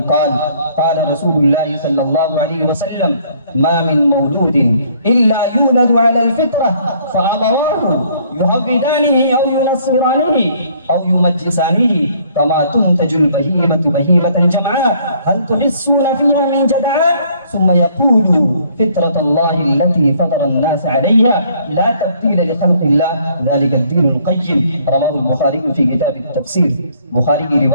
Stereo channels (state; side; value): inverted; both; correlation -0.62